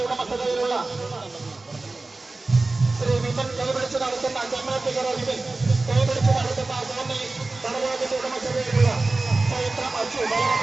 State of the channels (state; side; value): quieter; left; 3.3 dB